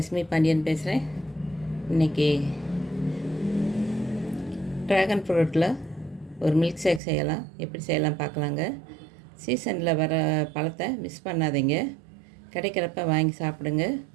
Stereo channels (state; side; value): drops out; left; at 7.0 s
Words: பாண்டியன் பேசுகிறேன். இன்றைக்கி ட்ராகன் ஃப்ரூட்டில் ஒரு மில்க் ஷேக் செய்யலாம். எப்படி செய்யலாம் பார்க்கலாங்க. சீசனில் வர பழத்தை மிஸ் பண்ணாதீங்க. கிடைக்கிறப்ப வாங்கி சாப்பிடுங்க.